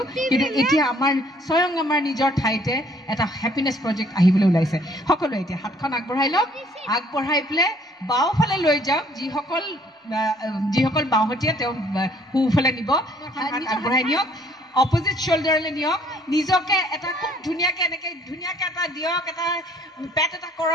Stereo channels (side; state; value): both; normal; correlation 0.60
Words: কিন্তু এতিয়া স্বয়ং আমাৰ নিজৰ ঠাইতে এটা হেপিনেছ প্ৰজেক্ট আহিবলৈ ওলাইছে সকলোৱে এতিয়া হাতখন আগবঢ়াই লওক আগবঢ়াই পেলাই বাওঁফালে লৈ যাওক যিসকল বাওঁহতীয়া তেওঁ সোঁফালে নিব আগবঢ়াই নিয়ক অপজিট শ্বল্ডাৰলৈ নিয়ক নিজকে এটা খুব ধুনীয়াকৈ এনেকৈ ধুনীয়াকৈ এটা দিয়ক এটা পেট এটা